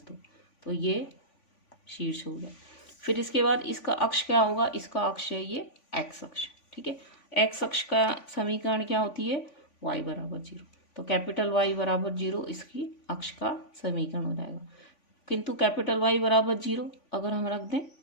तो ये शीर्ष हो गया। फिर इसके बाद इसका अक्ष क्या होगा, इसका अक्ष है ये एक्स अक्ष, ठीक है। एक्स अक्ष का समीकरण क्या होती है, वाई बराबर 0, तो कैपिटल वाई बराबर 0 इसकी अक्ष का समीकरण हो जाएगा। किंतु कैपिटल वाई बराबर 0 अगर हम रख दें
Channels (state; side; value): late; right; 3.5 ms